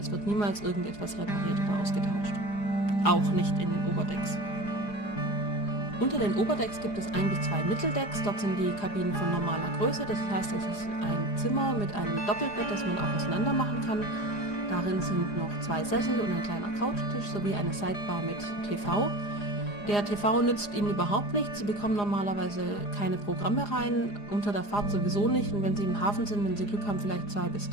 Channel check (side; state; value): right; late; 4.9 ms